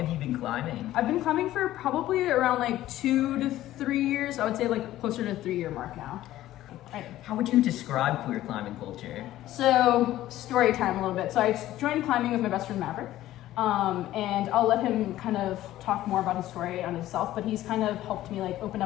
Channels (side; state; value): right; quieter; 14.4 dB